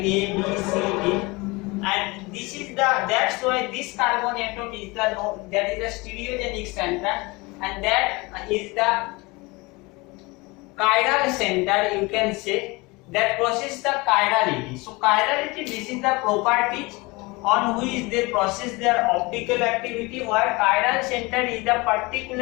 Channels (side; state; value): right; quieter; 24.6 dB